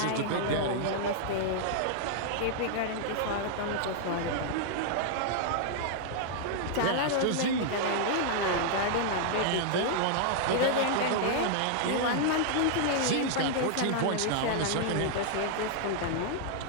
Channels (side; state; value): both; different; correlation -0.01